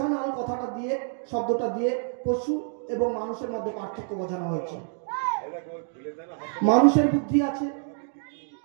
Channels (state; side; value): silent; left; 60 dB below the other